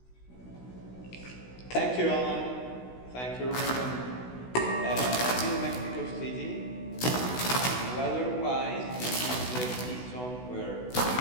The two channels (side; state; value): right; late; 16 ms